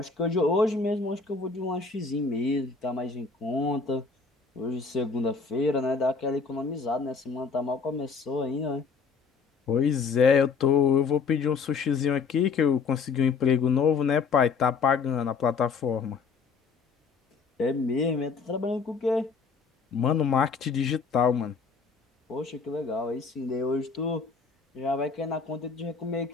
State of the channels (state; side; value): quieter; right; 5.1 dB